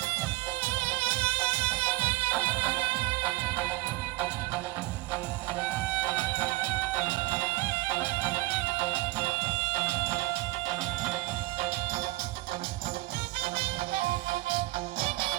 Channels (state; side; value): quieter; left; 20.6 dB